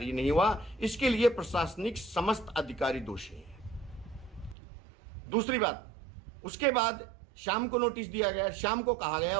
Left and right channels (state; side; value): drops out; left; at 4.5 s